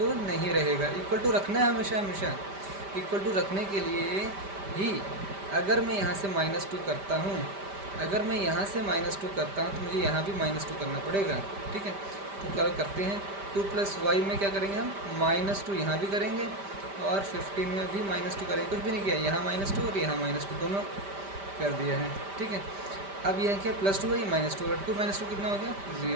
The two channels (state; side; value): late; left; 5.1 ms